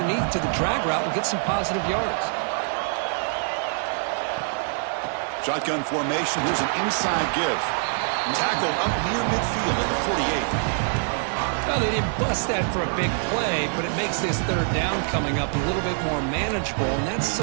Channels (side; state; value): left; silent; 62 dB below the other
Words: to the drag route and gets some positive yards. Shotgun formation. Here's an inside give. Tackled up near midfield at the 48. Well, they didn't bust that for a big play, but it makes this third down coming up a little bit more manageable, and that